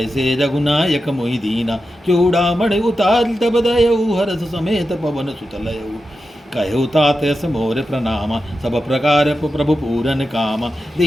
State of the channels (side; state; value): both; normal; correlation 0.90